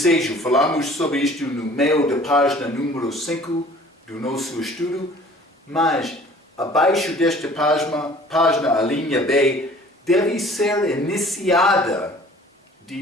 Falamos sobre isto no meio da página número 5 do nosso estudo, mas abaixo desta página, a linha B, deve ser iniciada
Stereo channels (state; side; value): normal; both; correlation 0.50